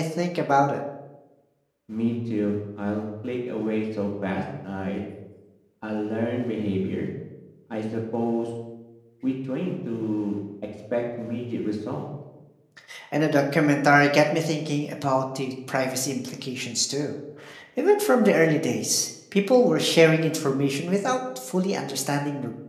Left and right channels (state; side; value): identical; both; correlation 1.00